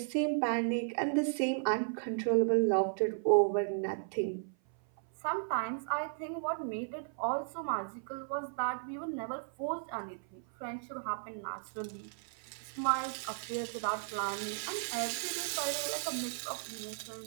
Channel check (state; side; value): silent; left; 54 dB below the other